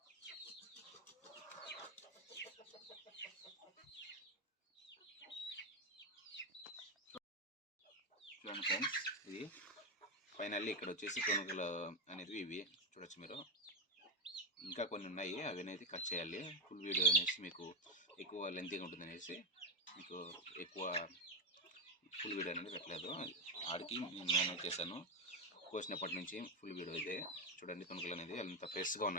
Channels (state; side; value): normal; both; correlation 0.08